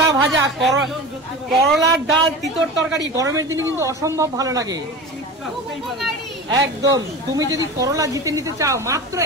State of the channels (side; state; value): both; normal; correlation 0.31